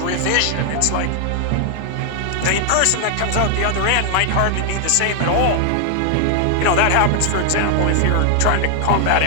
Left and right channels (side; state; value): both; different; correlation 0.00